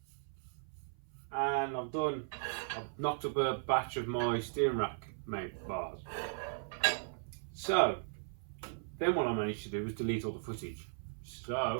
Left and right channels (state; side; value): silent; left; 53 dB below the other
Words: and I've knocked up a batch of my steering rack mount bars. So then what I managed to do was delete all the footage. So